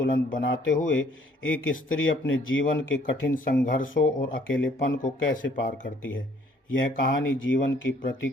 बनाते हुए एक स्त्री अपने जीवन के कठिन संघर्षों और अकेलेपन को कैसे पार करती है। यह कहानी जीवन की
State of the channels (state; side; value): normal; both; correlation 0.61